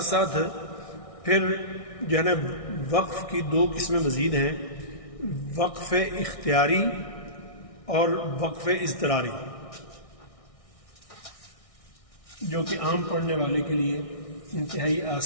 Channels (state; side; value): late; right; 1.6 ms